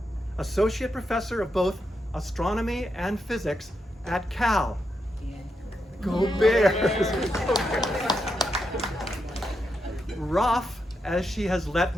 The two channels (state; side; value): normal; both; correlation 0.84